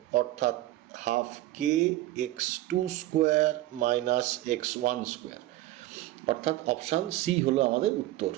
অর্থাৎ হাফ কে x2 square minus x1 square, অর্থাৎ অপশান সি হলো আমাদের উত্তর।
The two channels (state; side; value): quieter; left; 16.1 dB